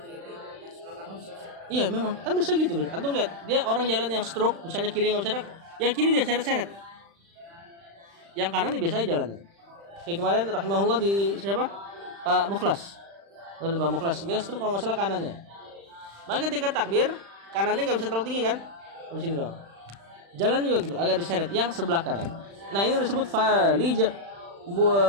Iya memang, kan bisa gitu. Antum lihat, dia orang jalan yang stroke, misalnya kiri nggak bisa gerak, yang kiri dia seret-seret, yang kanan dia biasa jalannya. Kayak kemarin rahimahullah di siapa? Pak Mukhlas. Lalu Pak Mukhlas dia stroke kalau nggak salah kanannya. Maka ketika takbir, kanannya nggak bisa terlalu tinggi kan? Di sini doang. Jalan juga gitu, agak diseret yang sebelah kanan. Nah ini disebut falij,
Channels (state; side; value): late; left; 35 ms